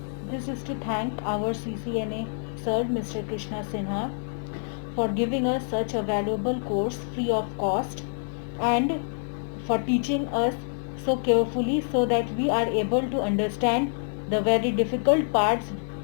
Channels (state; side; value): silent; right; 60 dB below the other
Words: This is to thank our CCNA sir, Mr. Krishna Sinha, for giving us such a valuable course free of cost and for teaching us so carefully so that we are able to understand the very difficult parts